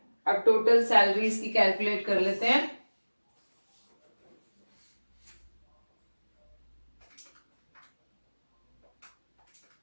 अब टोटल सैलरीज की कैलकुलेट कर लेते हैं।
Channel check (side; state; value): both; inverted; correlation -1.00